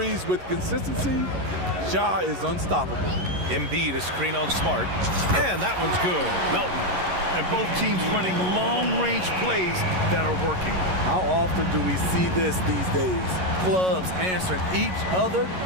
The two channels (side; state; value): left; late; 11 ms